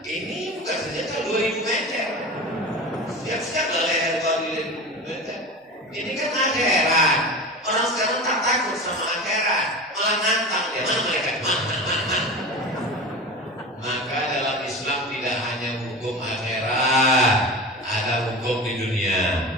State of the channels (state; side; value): normal; both; correlation 0.30